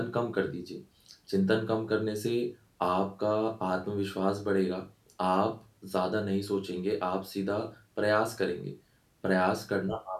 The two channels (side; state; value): both; identical; correlation 1.00